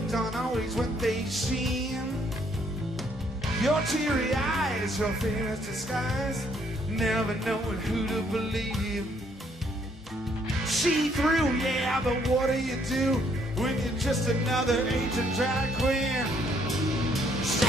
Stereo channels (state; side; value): normal; both; correlation 0.68